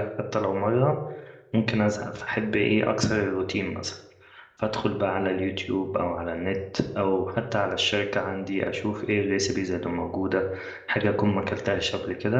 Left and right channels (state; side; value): identical; both; correlation 1.00